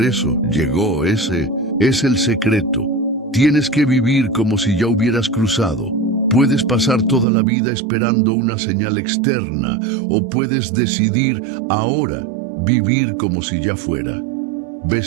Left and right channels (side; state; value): left; drops out; at 7.2 s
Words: eso llegó. Ese es el secreto. Tienes que vivir como si ya hubieras cruzado. Puedes pasar toda la vida esperando una señal externa, o puedes decidir ahora vivir como si ya fuera.